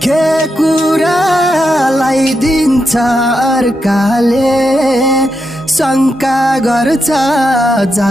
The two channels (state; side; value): normal; both; correlation 0.85